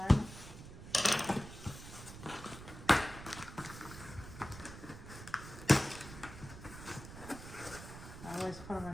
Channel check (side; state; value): right; noise; rumble, 13 dB below the sound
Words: I always put them